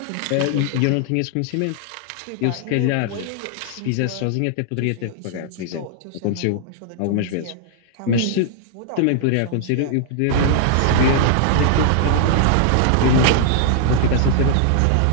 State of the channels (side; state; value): both; different; correlation -0.01